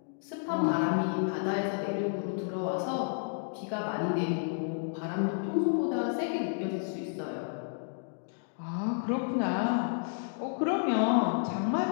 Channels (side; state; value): right; silent; digital silence